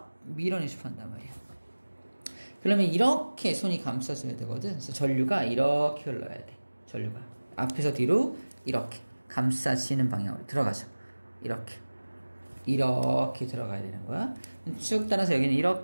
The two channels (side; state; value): both; inverted; correlation -1.00